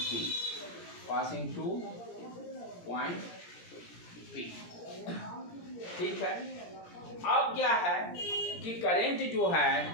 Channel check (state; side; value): late; right; 17 ms